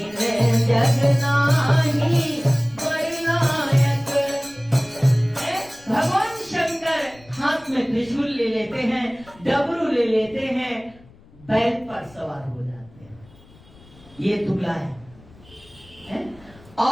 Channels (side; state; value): left; noise; rumble, 25 dB below the sound